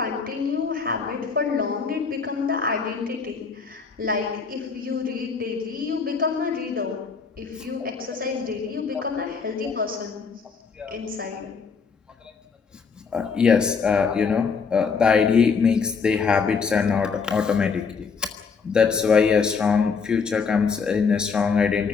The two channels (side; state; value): right; quieter; 5.5 dB